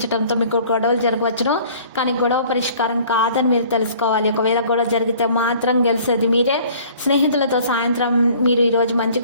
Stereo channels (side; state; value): both; inverted; correlation -0.52